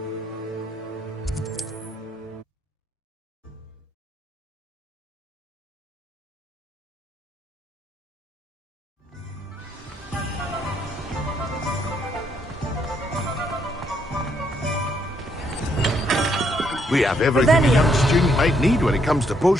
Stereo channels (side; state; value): both; normal; correlation 0.72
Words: We have everything a young student might need when it comes to